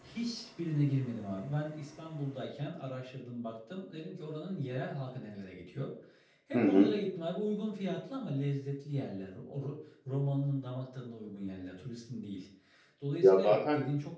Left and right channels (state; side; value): identical; both; correlation 1.00